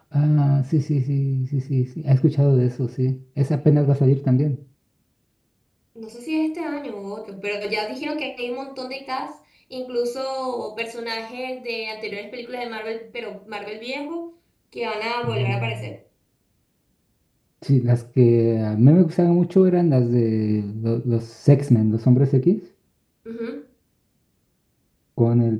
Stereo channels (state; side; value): identical; both; correlation 1.00